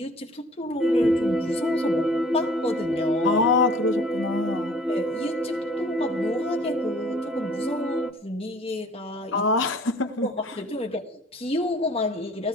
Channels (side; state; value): both; normal; correlation 0.51